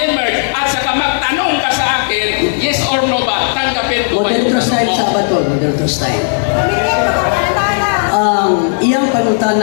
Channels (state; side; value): silent; right; digital silence